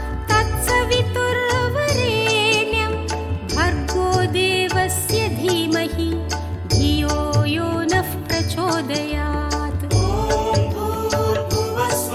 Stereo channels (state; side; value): identical; both; correlation 1.00